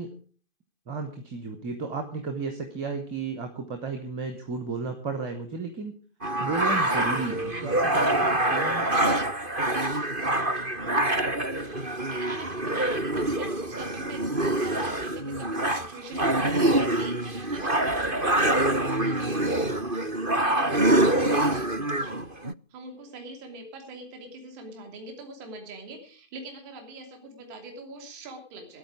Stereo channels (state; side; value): late; left; 2.5 ms